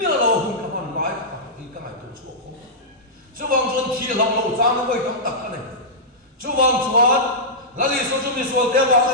lâu không các bạn nói thì các ngài tổ chức không chú vang chuan thi lam lo chang nó với tam tak ka nei chú vang chuan la li so chu mi so te wa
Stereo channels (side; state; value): both; normal; correlation -0.13